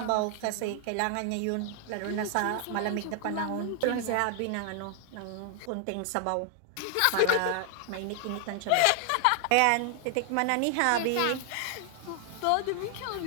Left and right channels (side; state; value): both; different; correlation 0.00